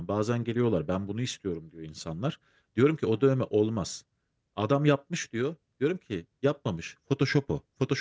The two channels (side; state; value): both; identical; correlation 1.00